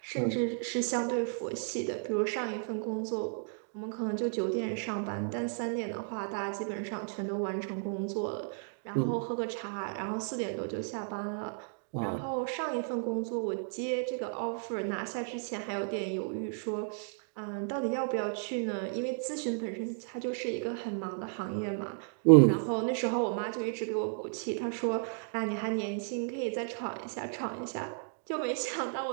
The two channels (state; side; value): silent; left; digital silence